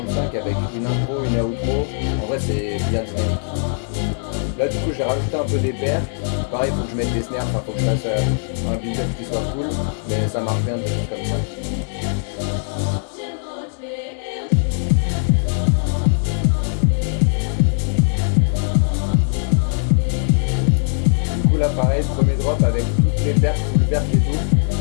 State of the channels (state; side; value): silent; right; digital silence